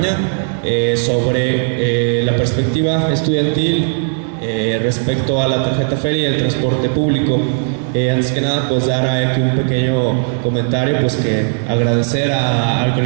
sobre la perspectiva estudiantil respecto a la tarjeta feria y el transporte público. Antes que nada, pues dar aquí un pequeño comentario, pues que agradecer al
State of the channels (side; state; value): left; silent; 64 dB below the other